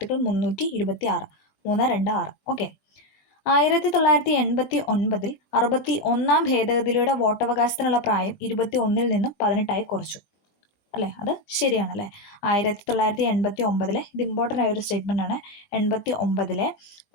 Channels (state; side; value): late; right; 21 ms